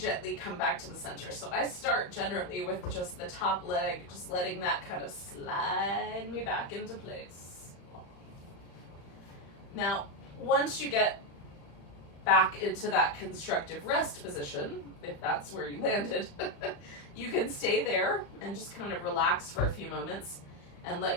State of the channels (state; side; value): late; right; 35 ms